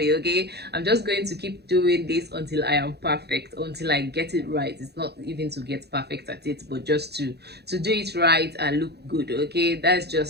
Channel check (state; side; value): late; left; 0.48 ms